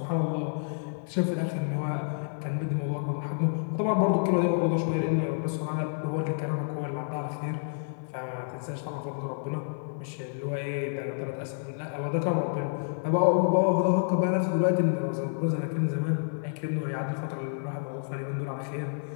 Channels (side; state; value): right; silent; 58 dB below the other